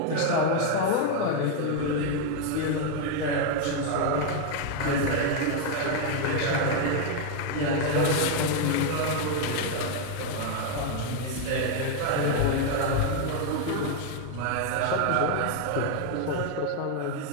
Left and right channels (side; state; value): both; different; correlation 0.01